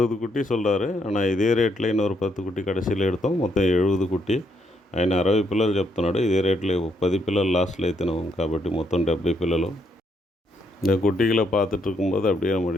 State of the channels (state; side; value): normal; both; correlation 0.74